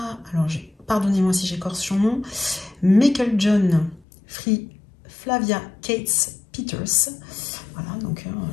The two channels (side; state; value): right; drops out; at 4.0 s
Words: alors pardonnez-moi si j'écorche son nom, Meiklejohn Free Flavia Cates Peters. Voilà, donc